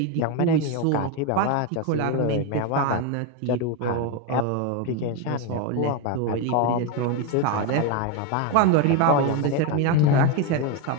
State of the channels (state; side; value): different; both; correlation 0.02